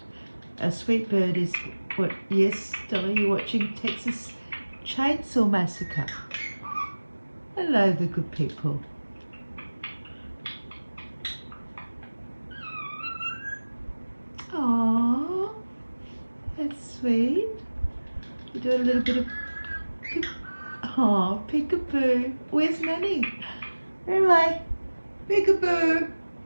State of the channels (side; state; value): both; inverted; correlation -1.00